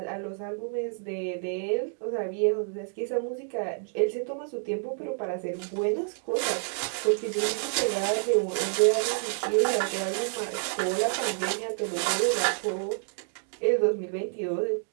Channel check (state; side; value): silent; left; digital silence